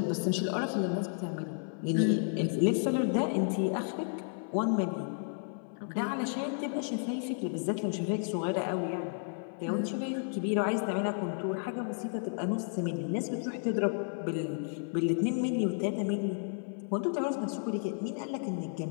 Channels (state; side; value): silent; right; 56 dB below the other